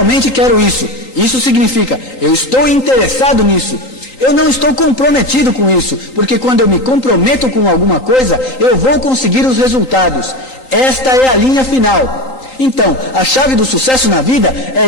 quero isso. Isso significa, eu estou interessado nisso. Eu não estou comprometido com isso, porque quando eu me comprometo com alguma coisa, eu vou conseguir os resultados. Esta é a linha final. Então, a chave do sucesso na vida é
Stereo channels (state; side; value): late; right; 3.8 ms